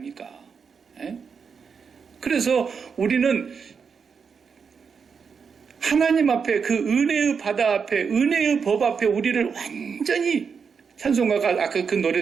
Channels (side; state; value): left; quieter; 6.0 dB